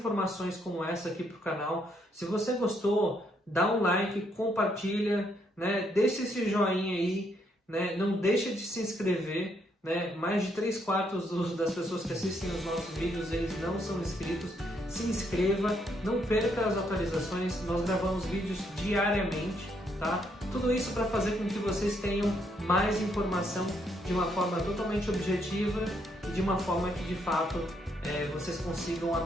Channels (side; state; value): both; normal; correlation 0.73